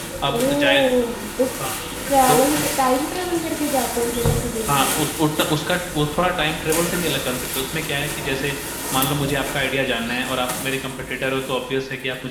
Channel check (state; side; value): identical; both; correlation 1.00